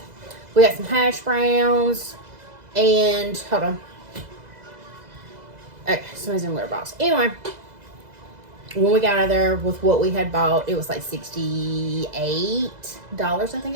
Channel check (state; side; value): late; left; 2.0 ms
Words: We got some hash browns. And hold on. Okay, somebody's in the litter box. Anyway, when we got out of there with what we had bought, it was like $68, I